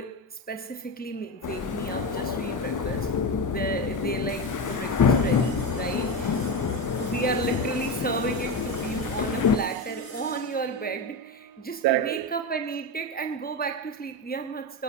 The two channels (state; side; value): normal; both; correlation 0.17